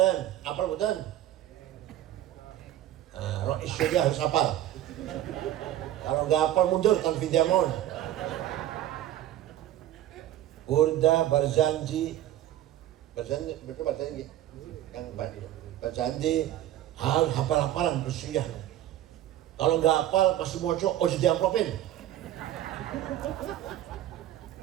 Rais sudah harus hafal. Kalau nggak hafal mundur tanpa diamond. Burda Barzanji, mereka bacanya gitu. Yang Janji harus hafal-hafalan bersiah. Kalau nggak hafal masih moco, oh jadi amplopin.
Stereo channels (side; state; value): left; quieter; 13.0 dB